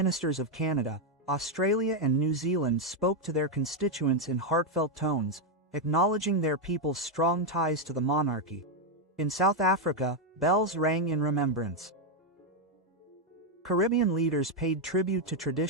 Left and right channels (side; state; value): both; normal; correlation 0.02